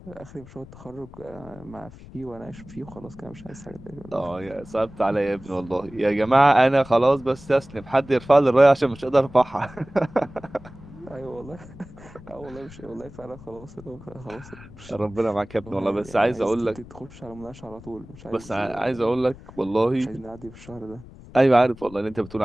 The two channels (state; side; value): noise; left; rumble, 18 dB below the sound